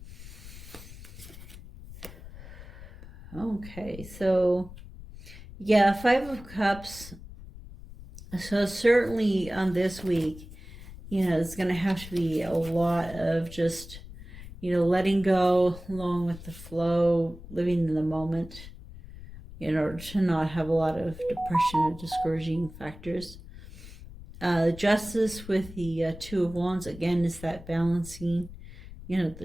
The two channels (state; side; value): noise; left; rumble, 15 dB below the sound